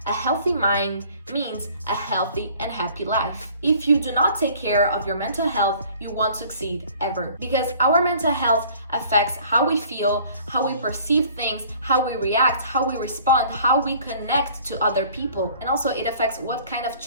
A healthy mind means a healthy and happy life. If you do not take care of your mental health, you won't succeed ever. Because our mental health affects how we feel, how we perceive things, how we react, how we respond, how we connect to other people. And also it affects what kind of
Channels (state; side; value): inverted; both; correlation -0.53